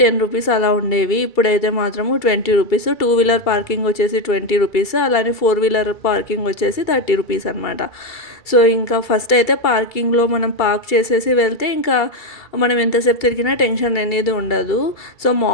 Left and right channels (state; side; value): late; right; 2.3 ms